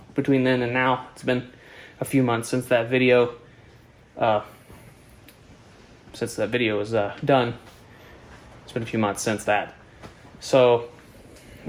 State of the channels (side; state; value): both; identical; correlation 1.00